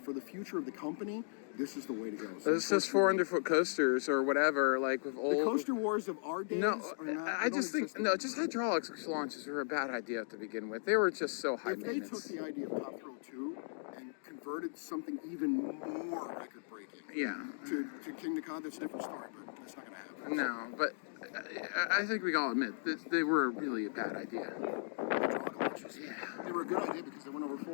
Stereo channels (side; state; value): right; silent; digital silence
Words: for the future of the company, this is the way to go. So It's just 400-foot coasters or whatever, like with old. the coaster wars of our days No, are not. I just think just hydraulics launches were a bad idea to begin with. They were just so high If they took maintenance. the idea of Top Thrill 2 and converted something even more record-breaking Yeah. to Kingda, that's a different story, but that's not going to happen. No, but I think we can all admit that they were really a bad idea. Hydraulic launches, they were a good idea because they went over